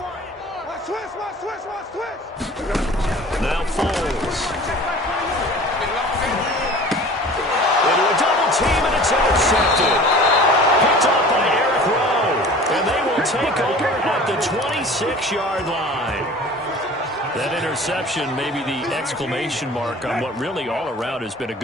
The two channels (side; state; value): both; normal; correlation 0.43